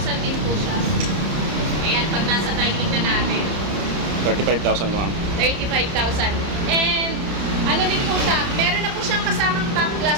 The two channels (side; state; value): left; late; 30 ms